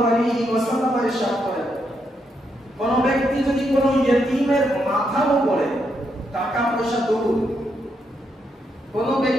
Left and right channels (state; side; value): normal; both; correlation 0.79